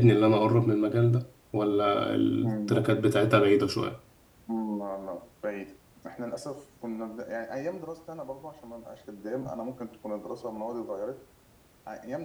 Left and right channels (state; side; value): identical; both; correlation 1.00